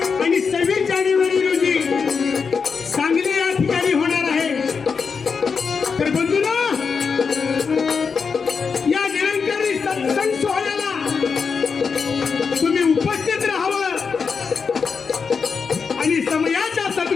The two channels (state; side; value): quieter; right; 5.6 dB